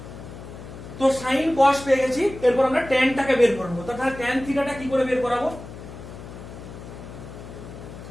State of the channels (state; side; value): noise; left; hum, 13 dB below the sound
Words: তো sin cos পেয়ে গেছি, এরপর আমরা tan টাকে বের করব। তাহলে tan থিটা টা কি করে বের করাবো?